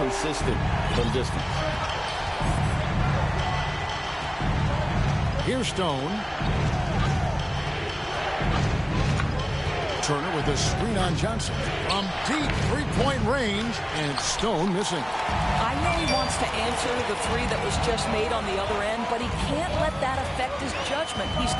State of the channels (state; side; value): identical; both; correlation 1.00